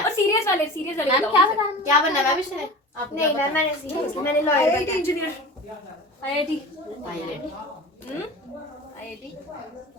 और सीरियस वाले मैम क्या बनना है मैम इसने? आप नहीं मैम मैंने सीरियसली मैंने लॉयर बनना है। इंजीनियर आईआईटी आईआईटी आईआईटी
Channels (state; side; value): normal; both; correlation 0.34